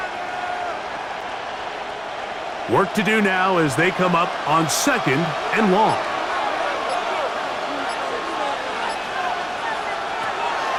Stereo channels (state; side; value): identical; both; correlation 1.00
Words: Work to do now as they come up on 2nd and long.